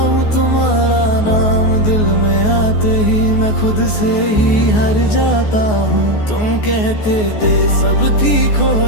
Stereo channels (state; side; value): late; right; 14 ms